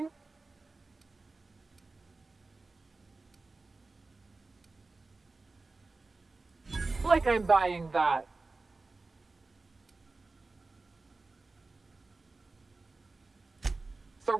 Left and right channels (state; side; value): quieter; left; 3.6 dB